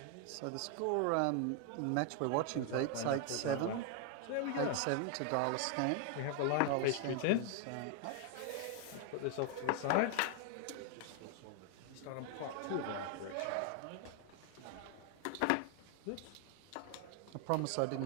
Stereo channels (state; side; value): different; both; correlation 0.00